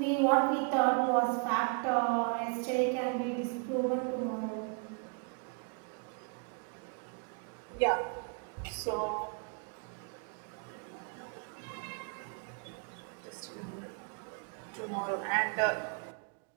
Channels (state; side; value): quieter; left; 35.7 dB